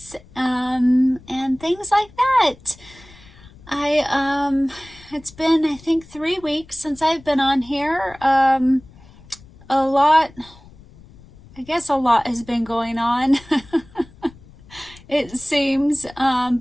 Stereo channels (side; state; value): left; noise; rumble, 23 dB below the sound